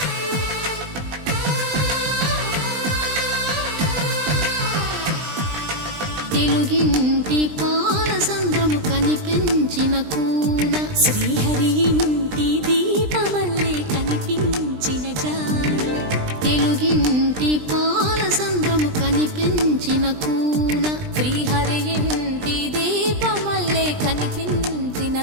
తెలుగింటి పాలసంద్రము కనిపించిన కూన శ్రీహరి ఇంటి దీపమల్లే కనిపించిన జాన తెలుగింటి పాలసంద్రము కనిపించిన కూన శ్రీహరి ఇంటి దీపమల్లే కనిపించిన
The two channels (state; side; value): late; left; 20 ms